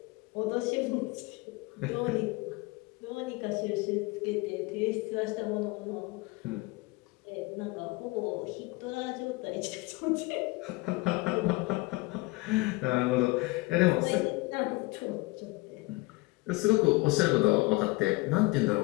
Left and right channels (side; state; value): right; quieter; 23.0 dB